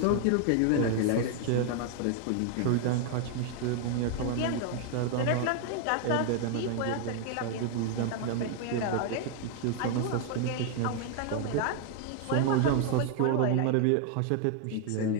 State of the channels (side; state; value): both; different; correlation 0.00